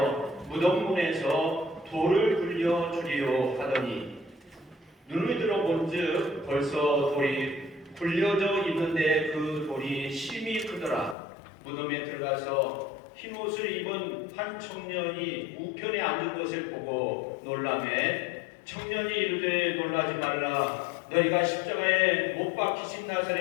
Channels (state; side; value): drops out; right; at 11.2 s